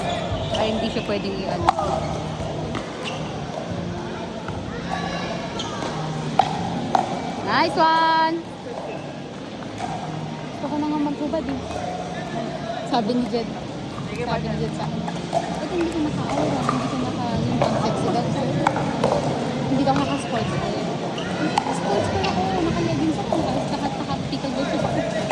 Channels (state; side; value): identical; both; correlation 1.00